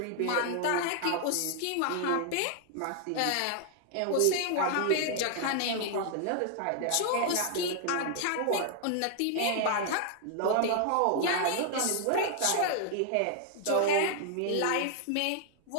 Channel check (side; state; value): both; different; correlation 0.00